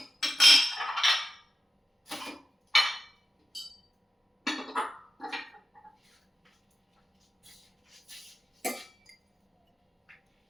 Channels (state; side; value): normal; both; correlation 0.91